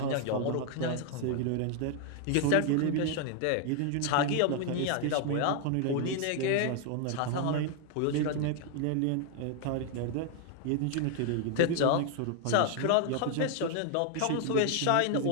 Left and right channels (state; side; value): different; both; correlation 0.00